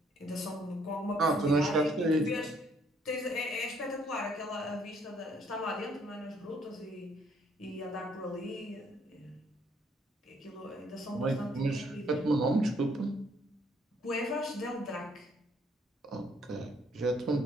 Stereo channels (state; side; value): normal; both; correlation 0.66